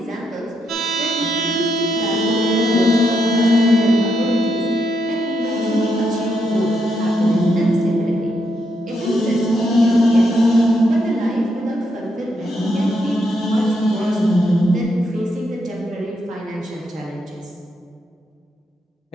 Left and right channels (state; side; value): normal; both; correlation 0.80